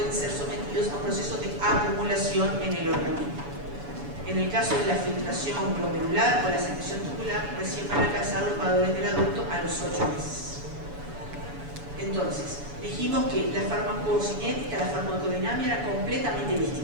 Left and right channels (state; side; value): late; left; 7.0 ms